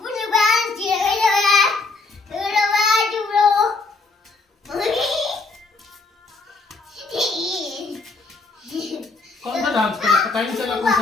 कौन सा डांस कर, पता ही नहीं चला कौन सा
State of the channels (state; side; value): quieter; right; 3.7 dB